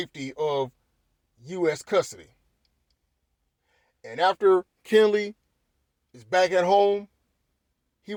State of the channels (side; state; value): both; identical; correlation 1.00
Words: of U.S. custody. And after Kenley is back at home, he